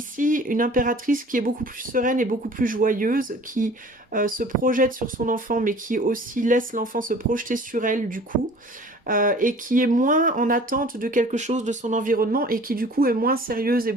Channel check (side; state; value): both; normal; correlation 0.47